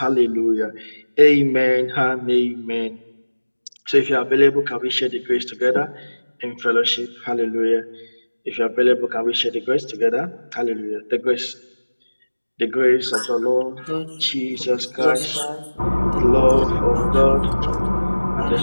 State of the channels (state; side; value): inverted; both; correlation -1.00